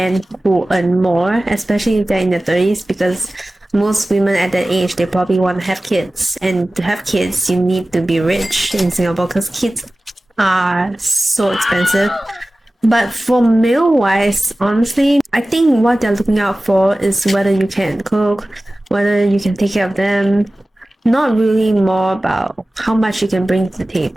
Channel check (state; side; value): normal; both; correlation 0.97